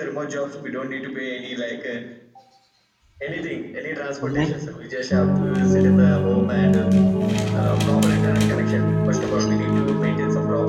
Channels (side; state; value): both; identical; correlation 1.00